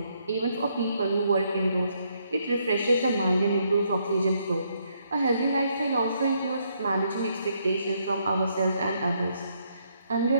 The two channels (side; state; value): both; inverted; correlation -0.73